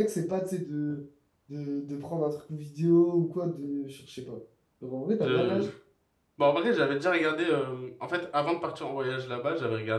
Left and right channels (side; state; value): both; identical; correlation 1.00